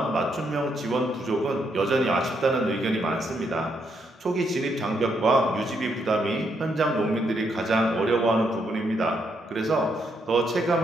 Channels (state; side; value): normal; both; correlation 0.77